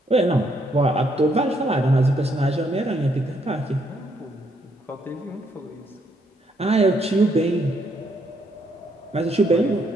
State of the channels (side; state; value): both; normal; correlation 0.73